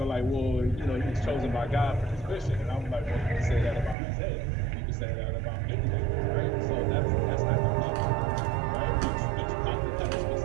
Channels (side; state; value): left; drops out; at 4.0 s